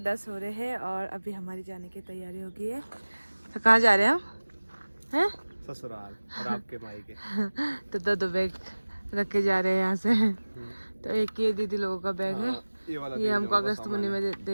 हो रहे हैं और अभी हमारी जाने की तैयारी हो गई है। तो कहाँ जा रहे हैं हम? हैं? ससुराल और आपके मायके। तो दो बैग रख के जा रहे हैं यहाँ से। तो एक ये दीदी लोगों का बैग है, ये हमको अगस्त महीने में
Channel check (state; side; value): inverted; both; correlation -1.00